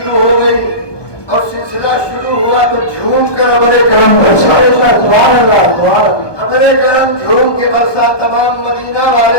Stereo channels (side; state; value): right; late; 1.2 ms